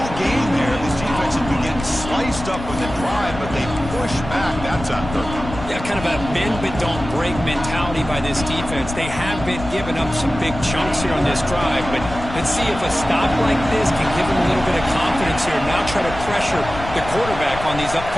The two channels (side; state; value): left; noise; rumble, 10 dB below the sound